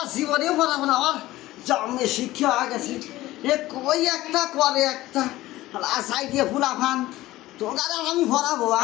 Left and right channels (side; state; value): right; quieter; 16.9 dB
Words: জীবনেও পড়াবো না আমার জন্মে শিক্ষা হয়ে গেছে এ কই একটা করে একটা আশাই দিয়ে ফুলাফান তোর আমি পড়াবো